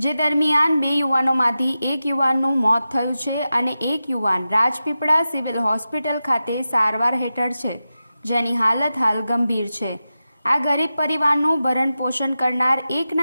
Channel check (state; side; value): inverted; both; correlation -0.92